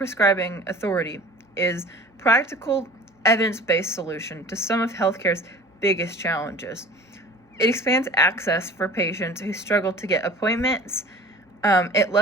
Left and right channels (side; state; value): both; normal; correlation 0.43